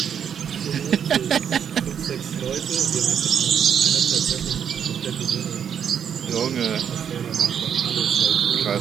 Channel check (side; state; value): left; quieter; 8.2 dB